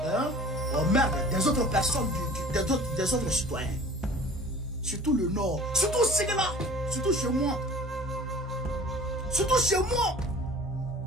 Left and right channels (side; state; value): both; normal; correlation 0.45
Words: des autres personnes, des autres citoyens. Surtout le Nord, surtout Ségala, surtout chez moi. Surtout chez moi.